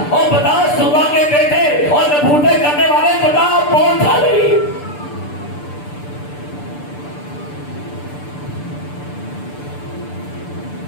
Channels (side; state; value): right; late; 6.8 ms